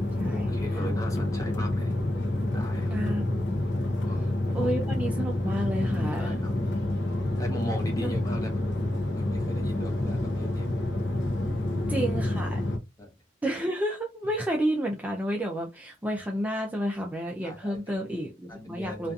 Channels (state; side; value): normal; both; correlation 0.86